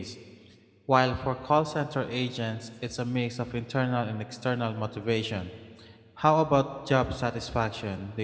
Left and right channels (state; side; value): identical; both; correlation 1.00